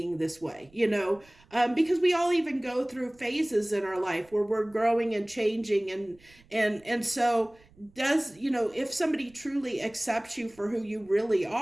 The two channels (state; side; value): noise; right; rumble, 29 dB below the sound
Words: this way, because we all even go through phases in our life where we're growing and changing, and so does, if somebody truly accepts you for who you really